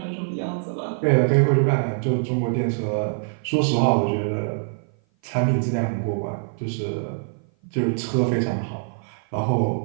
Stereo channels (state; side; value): silent; left; 56 dB below the other